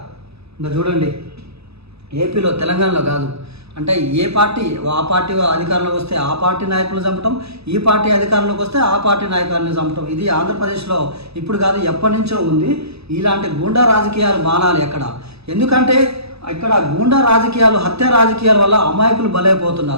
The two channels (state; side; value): late; left; 0.79 ms